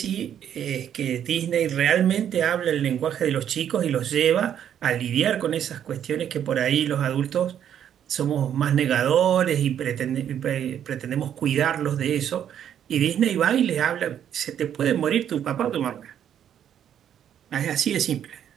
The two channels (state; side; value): quieter; left; 9.7 dB